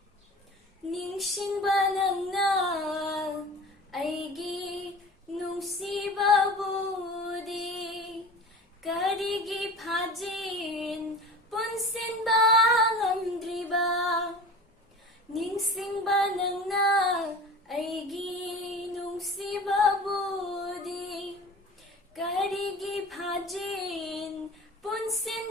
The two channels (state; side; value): normal; both; correlation 0.37